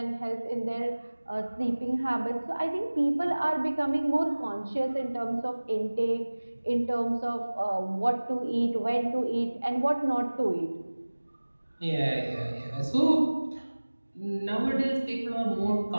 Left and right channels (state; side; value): inverted; both; correlation -1.00